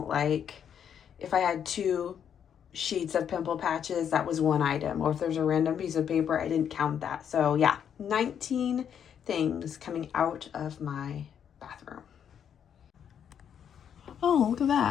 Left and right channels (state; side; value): quieter; right; 8.5 dB